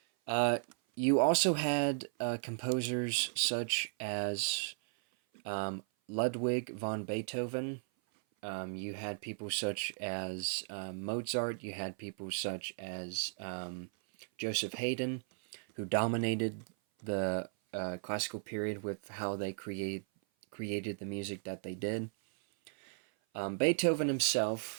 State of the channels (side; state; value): left; silent; 54 dB below the other